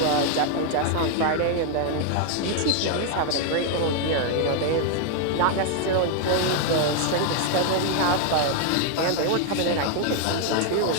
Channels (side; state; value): both; different; correlation 0.00